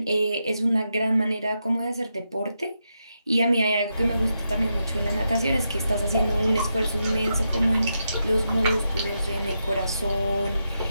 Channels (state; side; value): inverted; both; correlation -0.85